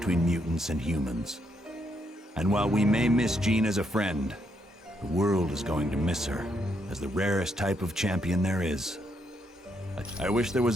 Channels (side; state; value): both; normal; correlation 0.76